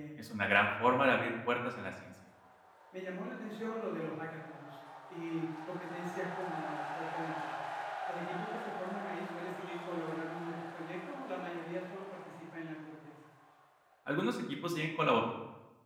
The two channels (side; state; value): both; identical; correlation 1.00